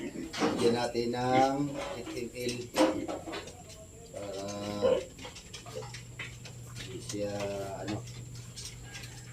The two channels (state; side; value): identical; both; correlation 1.00